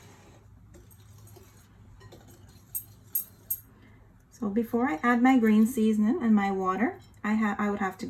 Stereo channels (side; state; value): both; identical; correlation 1.00